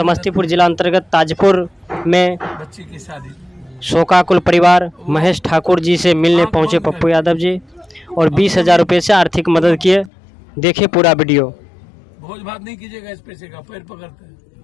जिला अंतर्गत ताजपुर में बच्ची की शादी, शोकाकुल परिवार महेश ठाकुर जी से मिलने पहुंचे पप्पू यादव जी और 20,000 रुपये से आर्थिक मदद किए। देखिए पूरा वीडियो। भोज भात नहीं कीजिएगा, इस पैसे का पैर पकड़ते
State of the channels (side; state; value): right; drops out; at 10.1 s